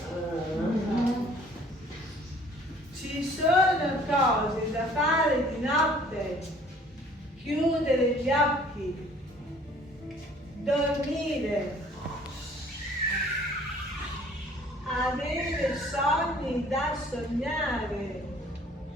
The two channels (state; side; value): normal; both; correlation 0.55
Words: Ci sono cose da fare di notte. Chiudere gli occhi, dormire, avere sogni da sognare,